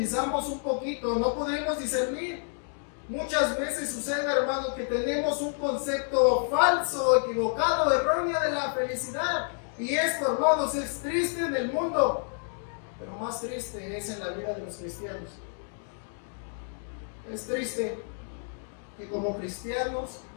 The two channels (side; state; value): right; silent; 58 dB below the other